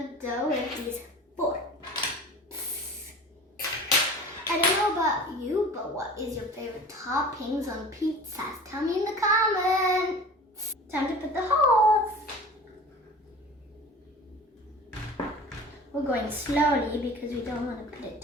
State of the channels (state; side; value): normal; both; correlation 0.40